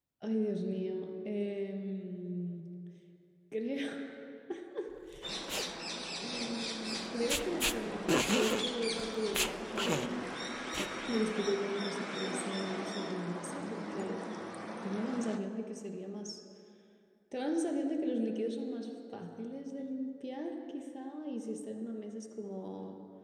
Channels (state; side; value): identical; both; correlation 1.00